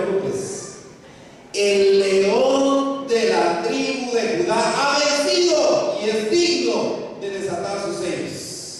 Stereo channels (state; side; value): identical; both; correlation 1.00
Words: el león de la tribu de Judá ha vencido y es digno de desatar sus sellos.